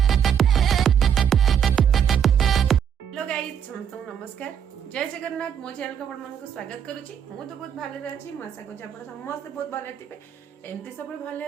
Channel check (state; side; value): quieter; left; 8.4 dB